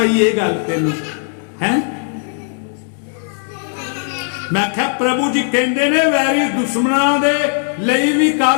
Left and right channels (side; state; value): right; silent; digital silence